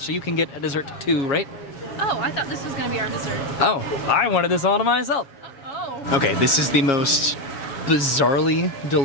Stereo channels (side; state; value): right; late; 7.3 ms